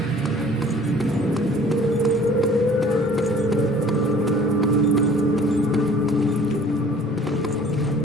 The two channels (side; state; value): both; normal; correlation 0.51